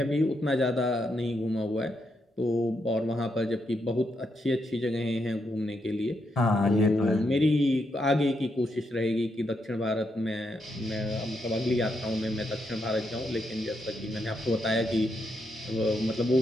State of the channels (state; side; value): normal; both; correlation 0.80